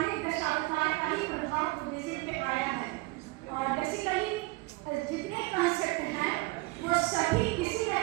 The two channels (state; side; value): quieter; left; 22.9 dB